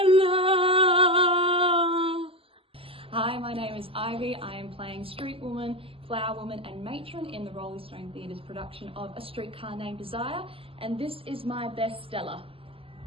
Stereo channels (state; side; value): late; left; 0.26 ms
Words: Hi, my name is Ivy. I am playing Street Woman, Flower Woman and Matron in the Roleystone Theatre's production of A Streetcar Named Desire, and this is my best Stella.